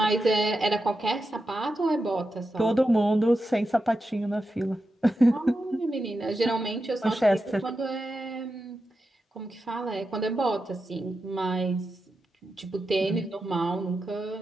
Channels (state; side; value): normal; both; correlation 0.89